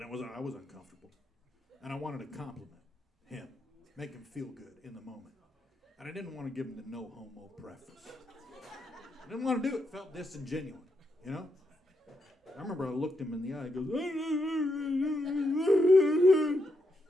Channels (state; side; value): normal; both; correlation 0.81